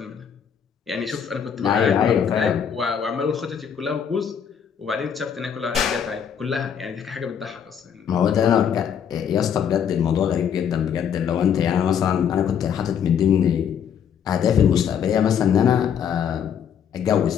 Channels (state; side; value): quieter; right; 8.1 dB